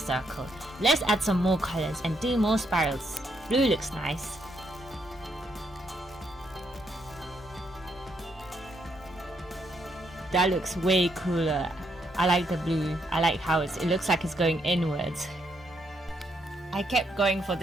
Let's add some more colors and do more spirals. Blue looks nice. That looks way cooler. I like the blue. I like how it looks like it's going inwards. I kept going for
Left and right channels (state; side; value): normal; both; correlation 0.76